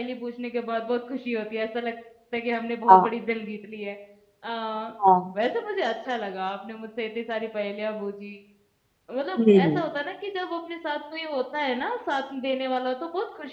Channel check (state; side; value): identical; both; correlation 1.00